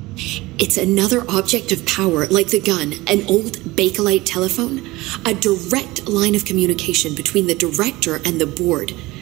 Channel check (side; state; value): left; quieter; 20.2 dB